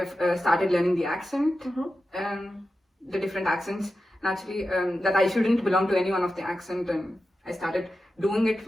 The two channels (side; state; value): both; normal; correlation 0.92